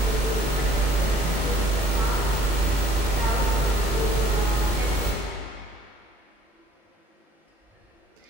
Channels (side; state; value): both; normal; correlation 0.58